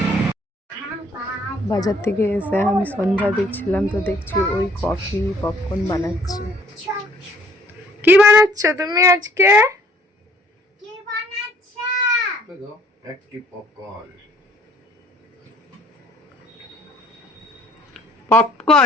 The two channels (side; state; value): both; normal; correlation 0.59